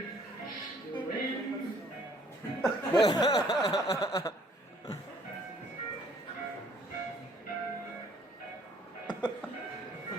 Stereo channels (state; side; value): normal; both; correlation 0.60